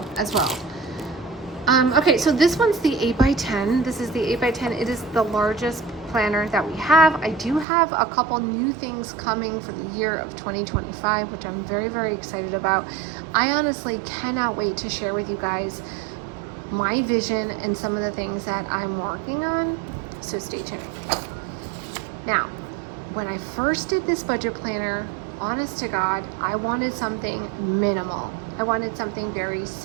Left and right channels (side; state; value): left; drops out; at 7.7 s